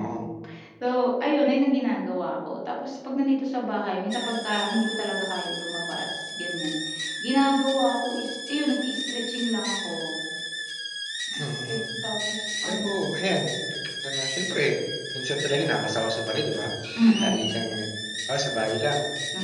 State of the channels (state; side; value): identical; both; correlation 1.00